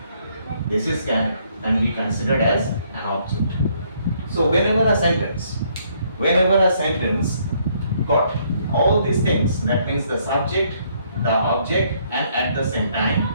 This is can be considered as an object. So whenever a sentence got all these things, that means the subject, the object, and at the same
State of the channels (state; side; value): inverted; both; correlation -0.68